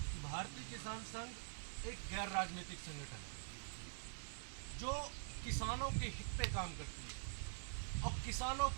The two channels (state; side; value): silent; left; digital silence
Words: भारतीय किसान संघ एक गैर राजनीतिक संगठन है जो किसानों के हित पे काम करती है और किसानों